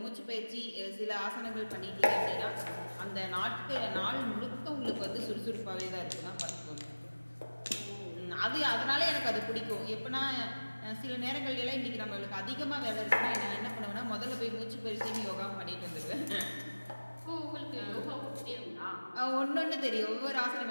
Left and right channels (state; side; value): inverted; both; correlation -1.00